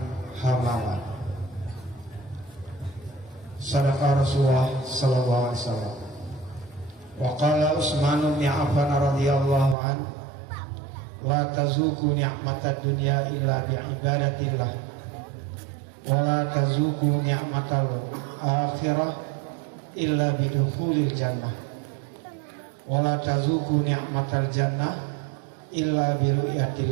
hamalan. Sadaqa Rasulullah sallallahu alaihi wasallam. Wa qala Utsman bin Affan radhiyallahu an, la tazuku ni'matad dunya illa bi ibadatillah wa la tazuku ni'matal akhirah illa bi dukhulil jannah wa la tazuku ni'matal jannah illa bi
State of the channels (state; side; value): drops out; left; at 9.8 s